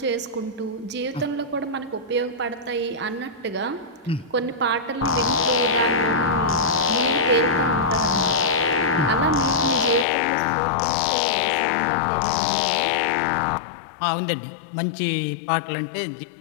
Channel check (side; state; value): right; drops out; at 10.1 s